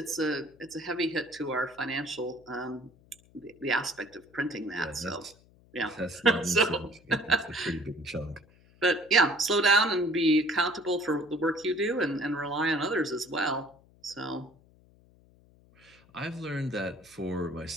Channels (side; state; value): left; noise; hum, 28 dB below the sound